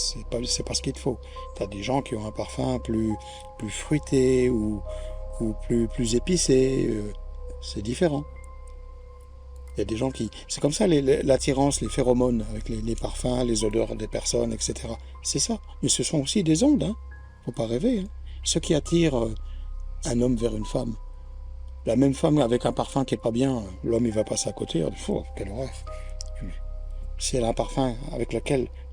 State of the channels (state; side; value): identical; both; correlation 1.00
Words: pas ce qu'il te faut. Tu as des gens qui ont un parfum plus fruité ou plus épicé. C'est différent. Il y a des gens qui... C'est comme ça, l'attirance, les phéromones, avec les parfums, les odeurs des personnes, etc. C'est ça. Mais ce sont aussi des ondes, hein. Faut pas rêver. Hein. Ce qui attire un homme vers une femme. La même femme avec un parfum qui est pas bien, l'homme il va passer à côté, il dit, oh, quelle horreur. Si elle a un parfum avec lequel